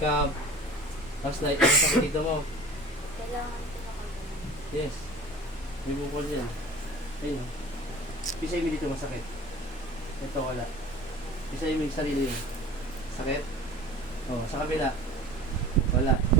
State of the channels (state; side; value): normal; both; correlation 0.41